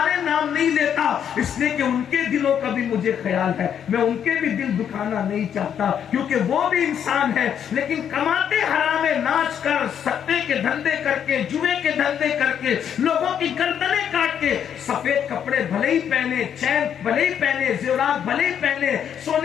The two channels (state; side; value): quieter; right; 8.7 dB